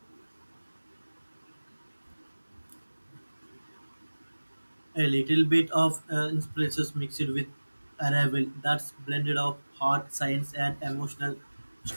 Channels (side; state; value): both; inverted; correlation -1.00